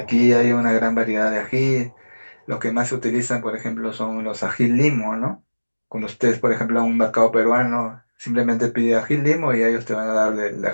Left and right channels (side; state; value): both; inverted; correlation -1.00